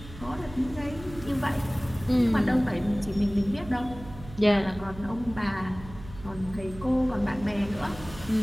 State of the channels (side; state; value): right; noise; hum, 16 dB below the sound